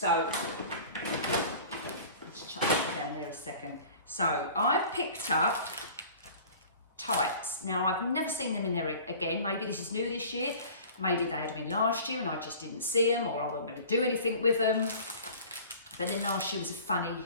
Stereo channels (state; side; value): inverted; both; correlation -0.43